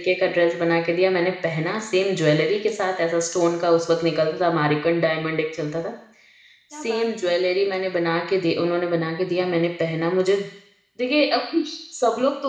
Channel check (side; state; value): both; identical; correlation 1.00